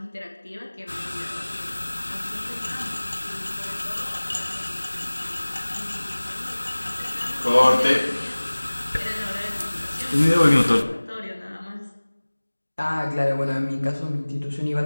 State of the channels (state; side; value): inverted; both; correlation -1.00